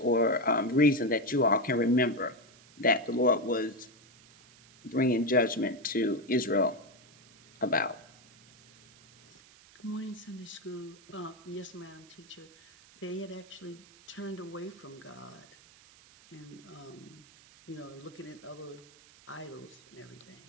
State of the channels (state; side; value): noise; right; hiss, 24 dB below the sound